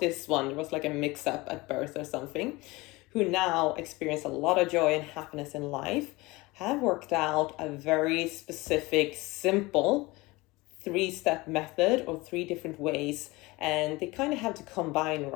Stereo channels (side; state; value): right; quieter; 22.3 dB